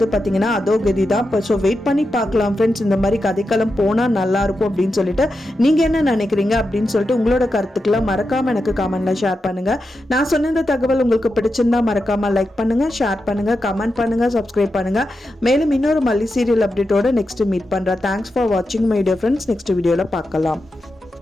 பாத்தீங்கன்னா அதோ கதி தான். ஸோ வெயிட் பண்ணி பார்க்கலாம் ஃப்ரெண்ட்ஸ், இந்த மாதிரி கதைக்களம் போனா நல்லா இருக்கும் அப்படின்னு சொல்லிட்டு நீங்க என்ன நினைக்கிறீங்க அப்படின்னு சொல்லிட்டு உங்களோட கருத்துக்களை மறக்காம எனக்கு கமெண்ட்ல ஷேர் பண்ணுங்க. நான் சொன்ன இந்த தகவல் உங்களுக்கு பிடிச்சிருந்தா மறக்காம லைக் பண்ணுங்க, ஷேர் பண்ணுங்க, கமெண்ட் பண்ணுங்க, சப்ஸ்கிரைப் பண்ணுங்க. மேலும் இன்னொரு மல்லி சீரியல் அப்டேட்டோட நெக்ஸ்ட் மீட் பண்றேன். தேங்க்ஸ் ஃபார் வாட்சிங் மை டியர் ஃப்ரெண்ட்ஸ். நெக்ஸ்ட் வீடியோல பார்க்கலாம்.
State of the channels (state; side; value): normal; both; correlation 0.88